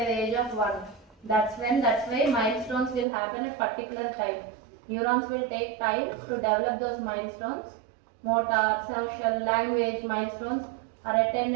the age of 1. That's why milestones will happen at particular time. Neurons will take time to develop those milestones. Motor, social, language milestones are attained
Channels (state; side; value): drops out; left; at 3.1 s